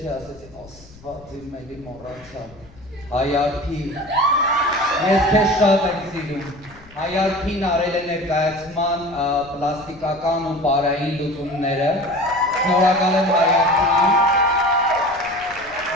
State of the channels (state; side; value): noise; left; rumble, 23 dB below the sound